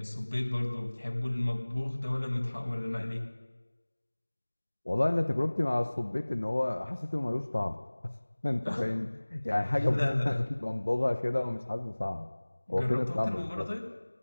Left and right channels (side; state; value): both; inverted; correlation -1.00